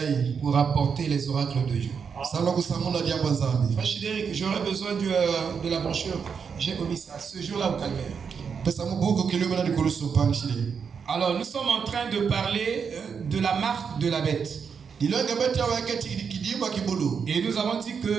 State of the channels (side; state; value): left; quieter; 6.4 dB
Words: pour apporter les oracles de Dieu. Frère Chidéric, j'aurais besoin de la brochure. J'ai omis ça ce jour-là au calvaire. Alors, nous sommes en train de parler de la marque de la bête. Et nous avons dit